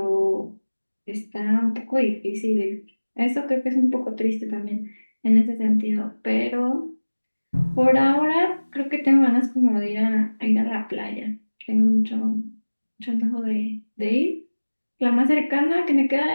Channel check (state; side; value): inverted; both; correlation -1.00